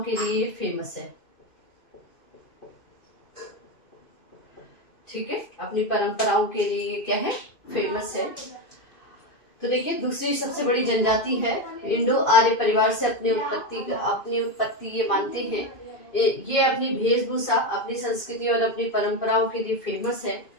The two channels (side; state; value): right; late; 2.5 ms